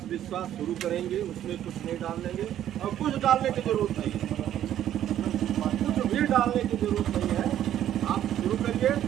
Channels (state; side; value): quieter; left; 11.4 dB